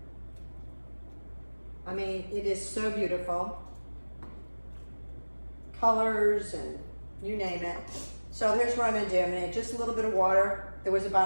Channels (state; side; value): inverted; both; correlation -1.00